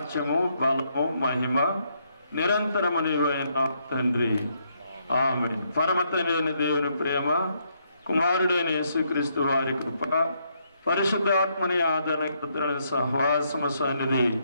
బలము, మహిమ నిరంతరము నీవైన తండ్రి, ఆమేన్. పరమతండ్రి దేవుని ప్రేమ, కుమారుడైన యేసుక్రీస్తు వారి కృప, పరిశుద్ధాత్మని ఆదరణ సహవాసము సన్నిధి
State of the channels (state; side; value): inverted; both; correlation -0.75